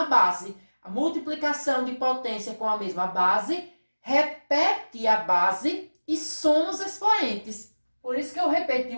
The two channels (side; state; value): both; inverted; correlation -1.00